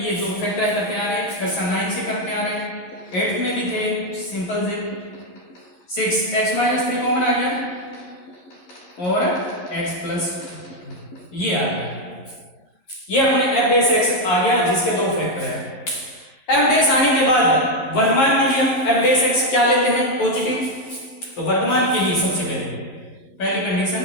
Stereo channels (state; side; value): late; right; 11 ms